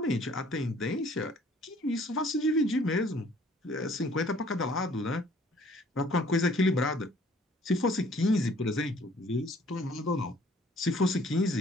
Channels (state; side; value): normal; both; correlation 0.57